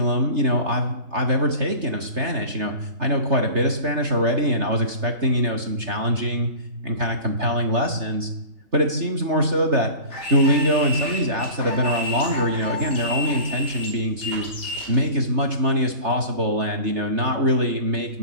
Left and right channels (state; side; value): late; left; 3.3 ms